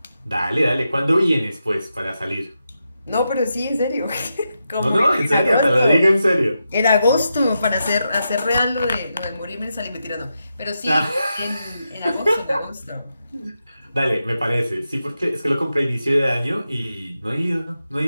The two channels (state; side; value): inverted; both; correlation -0.87